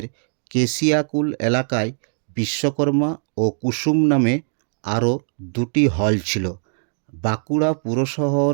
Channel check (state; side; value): silent; left; 65 dB below the other